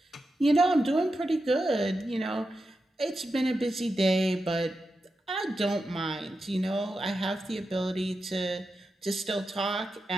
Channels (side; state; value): both; normal; correlation 0.89